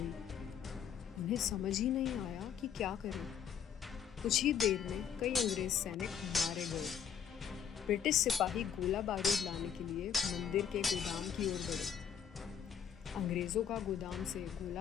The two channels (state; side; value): quieter; right; 8.2 dB